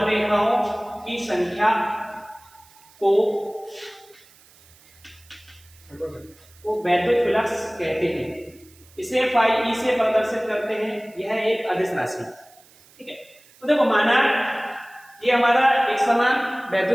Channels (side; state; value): right; noise; hiss, 27 dB below the sound